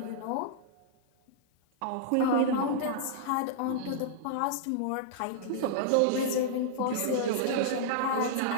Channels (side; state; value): both; different; correlation -0.02